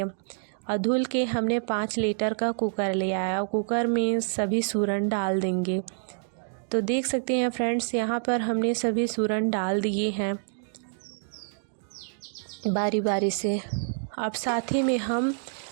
और धुल के हमने 5 लीटर का कुकर लिया है और कुकर में सभी सूरन डाल देंगे। तो देख सकते हैं फ्रेंड्स, यहाँ पर हमने सभी सूरन डाल दिए हैं बारी बारी से। अब साथ ही में हम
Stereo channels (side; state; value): left; silent; 60 dB below the other